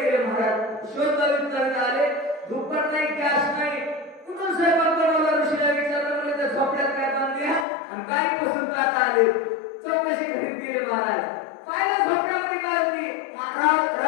गेले महाराज शोध लावित आले दुप्पट नाही गॅस नाही कुठून स्वयंपाक बनवला ऋषीला विचारलं म्हणजे त्या झोपड्यात काय बांधले आणि काय पसंत आता आले चौकशी करीत गेले महाराज पाहिलं झोपड्यामध्ये काय होती महाराज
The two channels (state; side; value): drops out; right; at 7.7 s